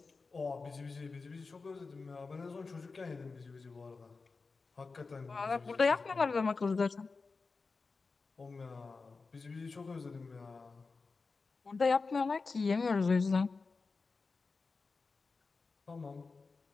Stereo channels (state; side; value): quieter; right; 4.3 dB